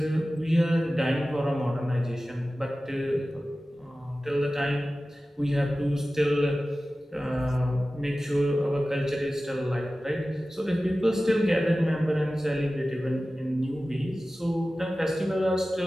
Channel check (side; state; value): both; normal; correlation 0.96